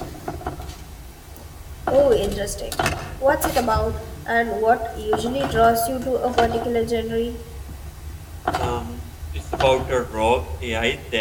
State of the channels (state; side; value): identical; both; correlation 1.00